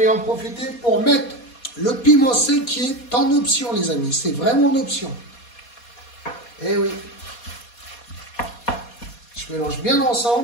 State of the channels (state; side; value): late; right; 4.2 ms